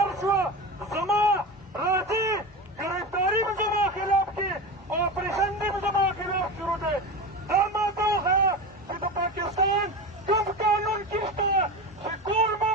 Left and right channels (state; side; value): normal; both; correlation 0.25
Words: شوه زما راځي ګرفتاري به زما خلاف کې او اپریشن دې به زما خلاف شروع دی. دا ماته وښیه چې د پاکستان کوم قانون کې شته چې ټول